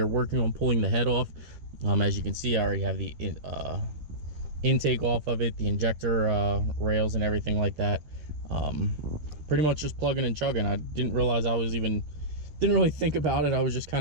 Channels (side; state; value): left; late; 13 ms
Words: working on pulling the head off. As you can see, I already have the intake off of it, the injector rails and everything like that. Pretty much just plugging and chugging. I didn't realize didn't really think about it. I was just